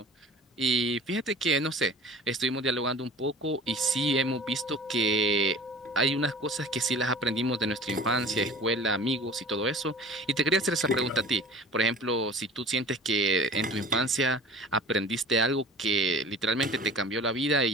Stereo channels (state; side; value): normal; both; correlation 0.42